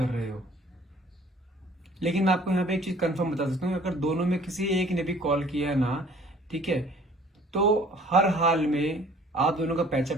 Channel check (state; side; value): normal; both; correlation 0.54